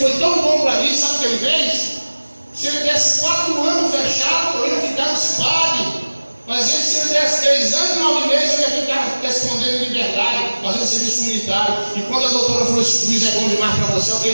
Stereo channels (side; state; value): both; inverted; correlation -1.00